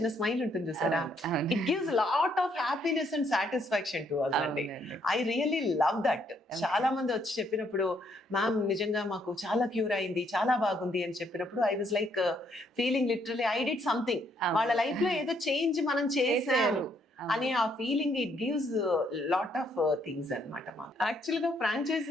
స్మైల్ ఉంటుంది చూసారా, it gives lot of happiness and satisfaction to us అండి. I really love that. చాలా మంది వచ్చి చెప్పినప్పుడు, మ్యామ్ నిజంగా మాకు చాలా క్యూర్ అయింది, చాలా బాగుంది అని చెప్పినప్పుడు I was like feeling literally I did something. వాళ్ళ లైఫ్ లో ఏదో చేంజ్ మనం చేసాము అనే ఆ feeling, it gives lot of things అనమాట. యాక్చువల్ గా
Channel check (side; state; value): both; normal; correlation 0.71